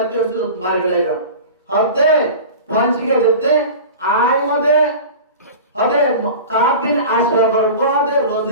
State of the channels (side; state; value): both; inverted; correlation -0.35